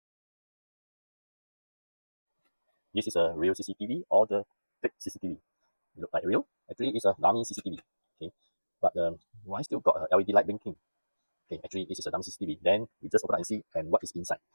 This is a real CCTV or the fake CCTV. It look like real. Actually, it's a dummy CCTV. Okay. But why still got a LED light blinking? Okay, actually, this is a dummy CCTV. Then we just open up and see and what is inside.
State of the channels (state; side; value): inverted; both; correlation -1.00